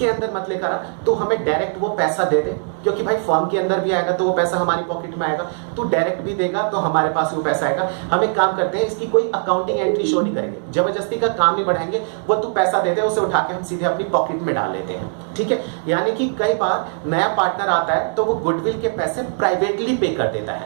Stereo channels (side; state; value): left; silent; digital silence